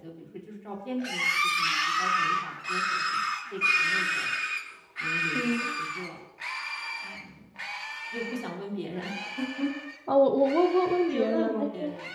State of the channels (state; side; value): identical; both; correlation 1.00